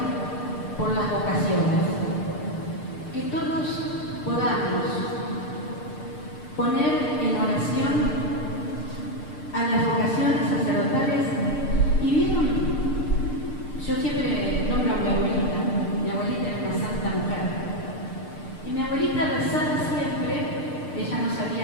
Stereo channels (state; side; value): late; right; 6.7 ms